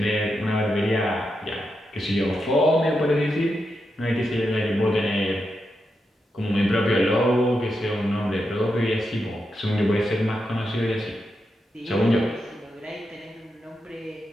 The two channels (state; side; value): normal; both; correlation 0.86